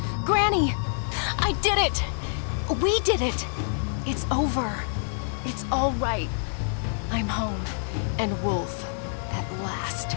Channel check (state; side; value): silent; right; digital silence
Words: Granny! I did it! We did it! It's over. It's all right. I'm home, and Woolfe, at last,